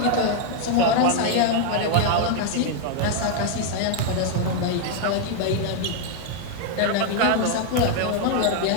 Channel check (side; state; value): both; different; correlation 0.00